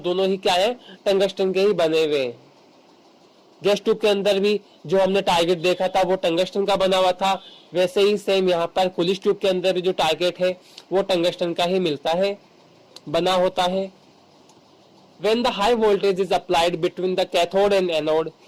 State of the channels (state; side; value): identical; both; correlation 1.00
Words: ही क्या है, टंगस्टन के ही बने हुए हैं। गैस ट्यूब के अंदर भी जो हमने टारगेट देखा था वो टंगस्टन का बना हुआ था, वैसे ही सेम यहाँ पर कुलिश ट्यूब के अंदर भी जो टारगेट है वो टंगस्टन का ही मिलता है, बना होता है। When the high voltage is applied between the cathode and anode,